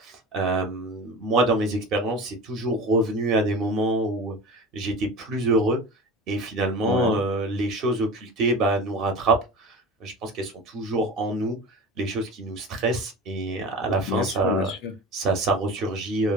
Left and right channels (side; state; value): both; normal; correlation 0.32